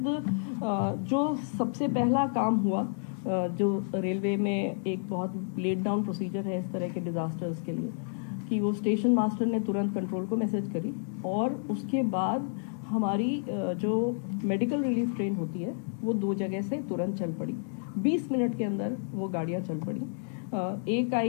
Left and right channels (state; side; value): silent; right; digital silence